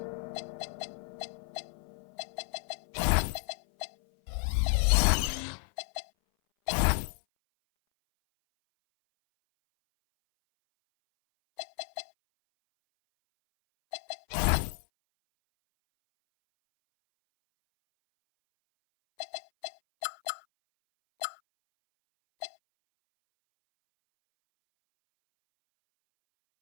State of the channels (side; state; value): right; silent; 56 dB below the other